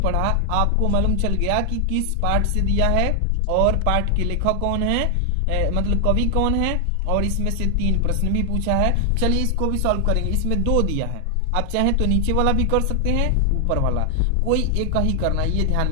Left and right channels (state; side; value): different; both; correlation 0.00